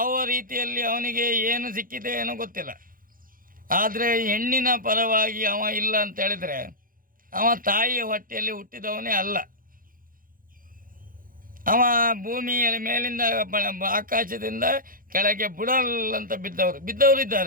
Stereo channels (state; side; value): late; left; 0.41 ms